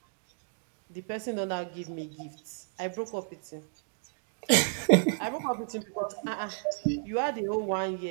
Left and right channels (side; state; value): left; silent; digital silence